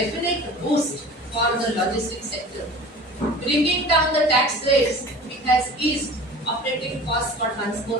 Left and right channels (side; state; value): both; normal; correlation 0.40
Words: boost for the logistics sector. Bringing down the tax rates, it has eased operating costs for